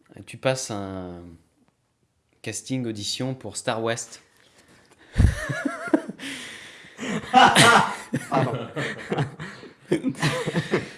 tu passes un casting audition pour Star West. Pardon.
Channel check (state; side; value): identical; both; correlation 1.00